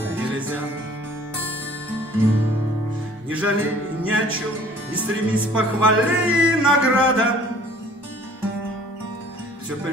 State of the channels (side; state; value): both; normal; correlation 0.52